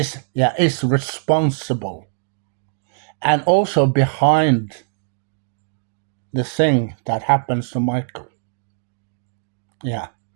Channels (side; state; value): left; silent; digital silence